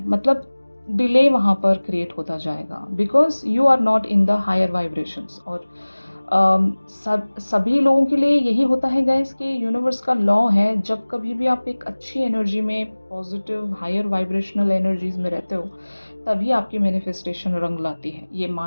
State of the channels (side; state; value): both; inverted; correlation -1.00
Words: मतलब डिले वहाँ पर क्रिएट होता जाएगा, because you are not in the higher vibrations. और सभी लोगों के लिए यही होता है गाइस कि यूनिवर्स का लॉ है, जब कभी भी आप एक अच्छी एनर्जी में, पॉजिटिव हायर वाइब्रेशनल एनर्जीज में रहते हो, तभी आपकी मैनिफेस्टेशन रंग लाती है। ये